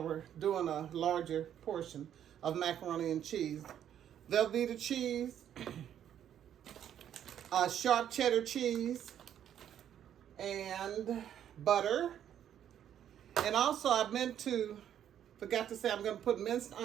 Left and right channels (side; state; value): left; quieter; 10.0 dB